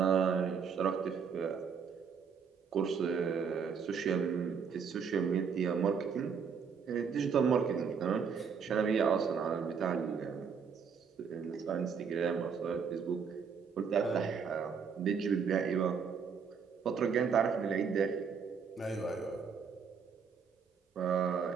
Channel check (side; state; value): left; quieter; 6.3 dB